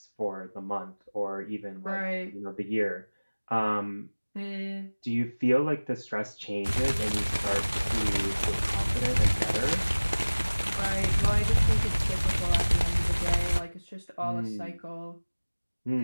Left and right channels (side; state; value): both; inverted; correlation -1.00